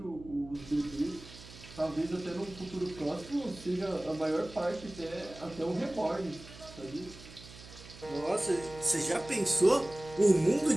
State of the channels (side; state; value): right; noise; hum, 17 dB below the sound